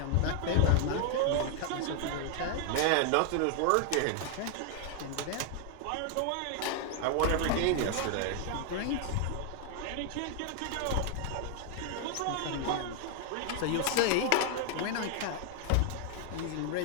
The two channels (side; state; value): both; different; correlation 0.00